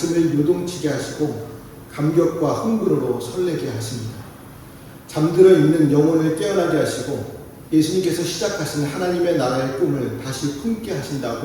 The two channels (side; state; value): both; identical; correlation 1.00